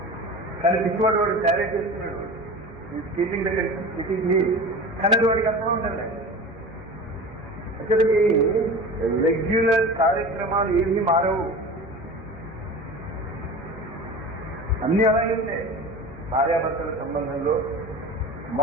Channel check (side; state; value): both; normal; correlation 0.34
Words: కానీ పిచ్చివాడు వాడు తయారు చేస్తున్నాడు. స్కీపింగ్ దగ్గర సిటీకి కానీ వాడికి అర్థం ఉండాలి. అసలుకి రెగ్యులర్ కార్యక్రమాలు ఏమీ మారవు, అన్ని అలాగే ఉంటాయి. భార్యాభర్తల సంబంధంలో